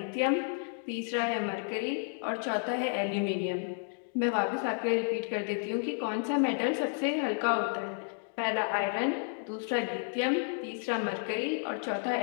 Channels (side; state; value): right; silent; 57 dB below the other